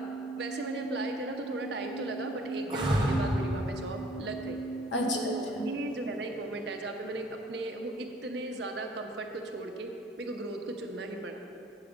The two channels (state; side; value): normal; both; correlation 0.56